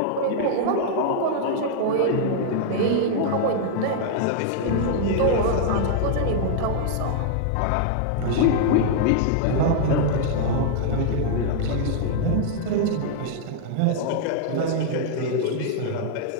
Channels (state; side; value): different; both; correlation -0.01